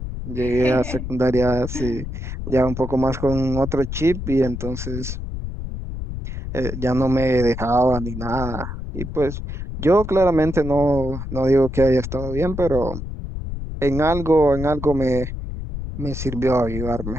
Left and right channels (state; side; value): noise; left; rumble, 7 dB below the sound